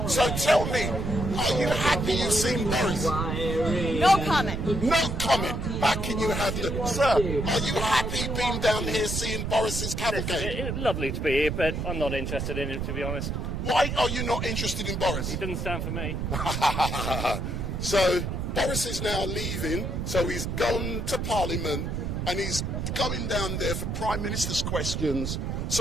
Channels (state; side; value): noise; right; rumble, 2 dB below the sound